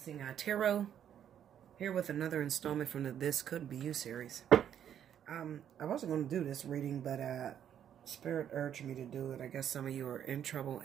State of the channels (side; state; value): left; quieter; 9.6 dB